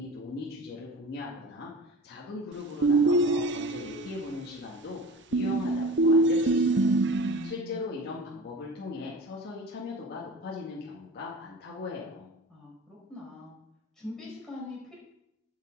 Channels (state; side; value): normal; both; correlation 0.36